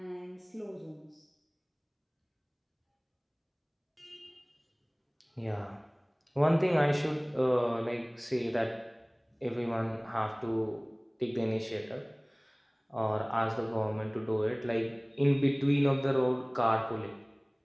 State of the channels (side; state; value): both; identical; correlation 1.00